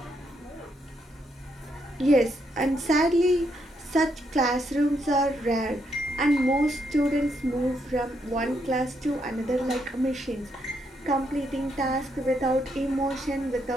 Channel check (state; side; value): normal; both; correlation 0.77